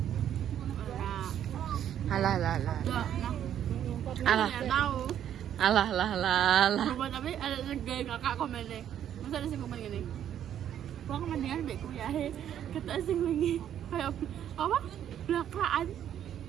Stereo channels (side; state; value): left; quieter; 10.2 dB